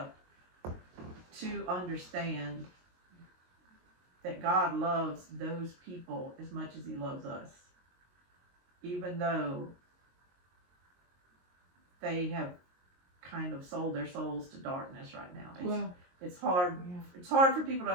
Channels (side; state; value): left; late; 22 ms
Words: to understand that God loves those people as much as he loves us, even though they have kind of sold their souls to darkness right now. It's hard. Yeah. It's hard for people to